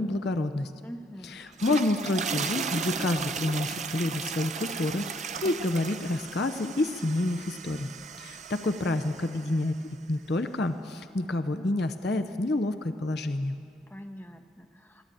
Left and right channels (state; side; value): normal; both; correlation 0.70